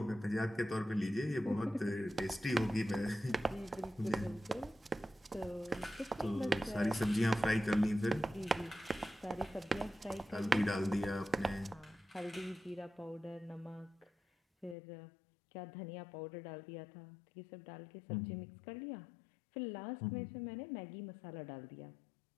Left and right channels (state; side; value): drops out; right; at 14.8 s